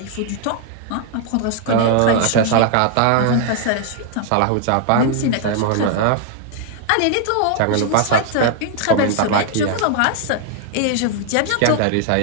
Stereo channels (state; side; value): different; both; correlation 0.00